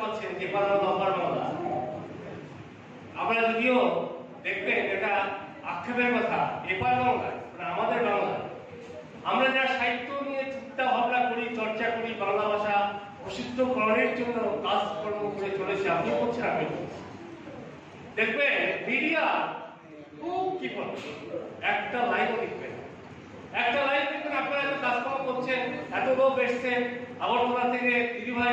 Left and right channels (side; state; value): both; identical; correlation 1.00